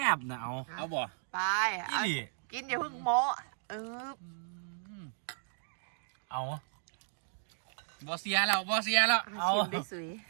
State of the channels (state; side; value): silent; left; digital silence